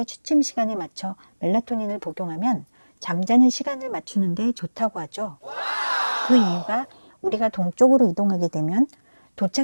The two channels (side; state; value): both; inverted; correlation -1.00